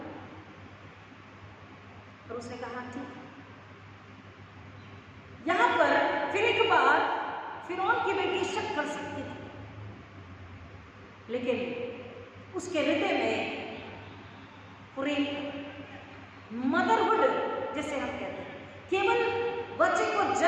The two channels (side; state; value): both; identical; correlation 1.00